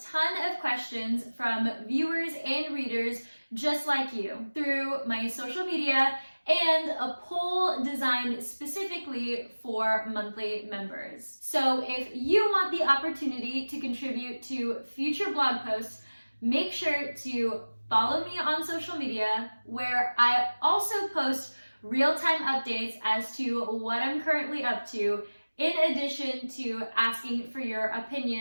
of questions from viewers and readers just like you through my social media and a poll designed specifically for monthly members. So if you want the opportunity to contribute to future blog posts, make sure to follow me on social media, where I also post real-time updates as to what I'm currently up to, in addition to asking for your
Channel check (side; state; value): both; inverted; correlation -1.00